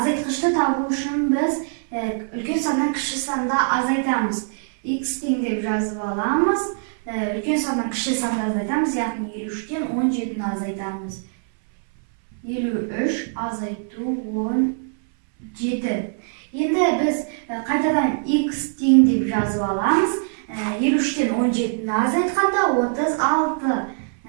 табу үшін біз үлкен саннан кіші санды азайтамыз. X тең деп жазып аламыз. Үлкен саннан кіші санды азайтамыз, яғни 53-тен 17-ні азайтамыз. 53 азайту 17. Енді біз қайтадан X тең деп жазып аламыз. 53-тен 17-ні азайтқанда 36.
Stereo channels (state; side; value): silent; left; 59 dB below the other